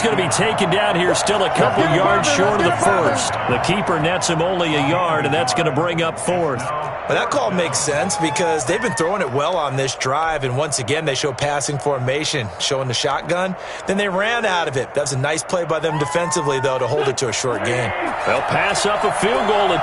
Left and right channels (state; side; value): identical; both; correlation 1.00